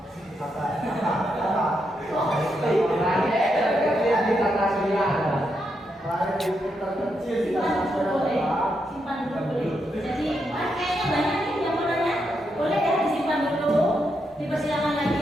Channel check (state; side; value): normal; both; correlation 0.82